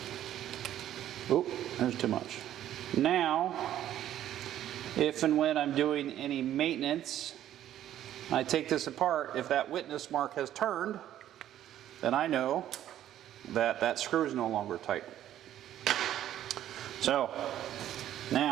oop, there's too much. Now, if and when I'm doing any maintenance, I take this apart. If that witness mark has turned, then I know that that screw is no longer tight. So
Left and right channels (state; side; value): quieter; left; 11.9 dB